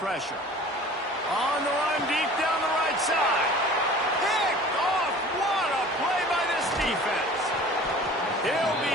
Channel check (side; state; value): both; normal; correlation 0.44